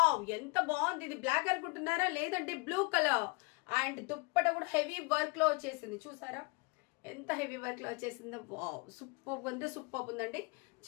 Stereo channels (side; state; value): right; quieter; 28.8 dB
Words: ఎంత బాగుంది. ఇది బ్లాక్ అనుకుంటున్నారా? లేదంటే బ్లూ కలర్. అండ్ దుప్పట కూడా హెవీ వర్క్ లో వచ్చేసింది. చూసారా ఎంత హెవీ వర్క్ లో వచ్చేసిందో? వావ్ సూపర్ ఉంది, సూపర్ ఉందండి.